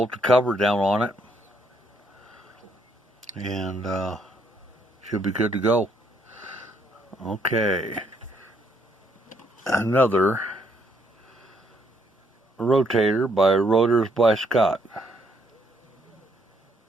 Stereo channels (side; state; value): both; normal; correlation 0.70